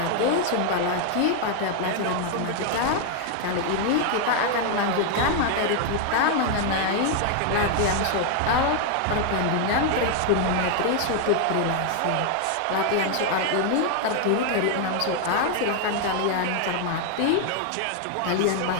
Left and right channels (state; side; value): different; both; correlation 0.00